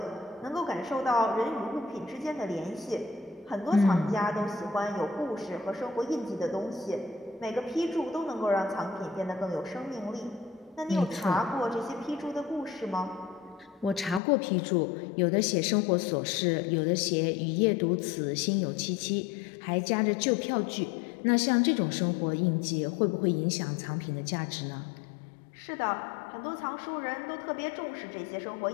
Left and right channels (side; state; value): right; drops out; at 14.2 s